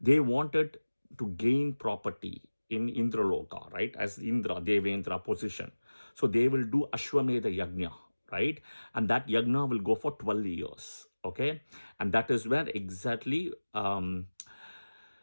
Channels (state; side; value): inverted; both; correlation -1.00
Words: They wanted to gain property in Indraloka, right, as Indra, Devendra position. So they will do Ashwamedha Yajna, right? And that Yajna will go for 12 years, okay? And that is where exactly,